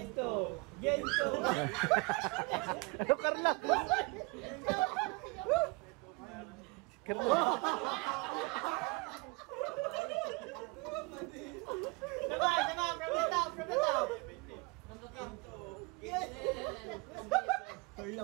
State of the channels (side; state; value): left; quieter; 27.8 dB